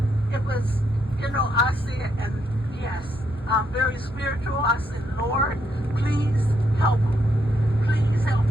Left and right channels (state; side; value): normal; both; correlation 0.76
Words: said, and yes, I'm very spiritual. I said, Lord, please help him. Please help